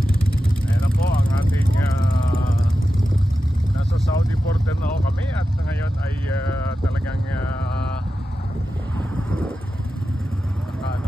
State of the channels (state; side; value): normal; both; correlation 0.92